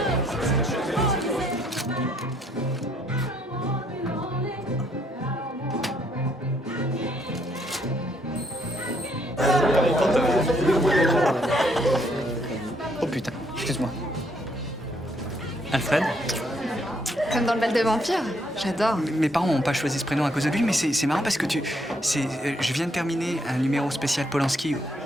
Oh putain, excuse-moi. Alfred? Comme dans le bal de vampire, j'adore. Mes parents n'ont pas choisi ce prénom à cause de lui, mais c'est marrant parce que je viens de terminer un numéro spécial Polanski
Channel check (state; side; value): normal; both; correlation 0.70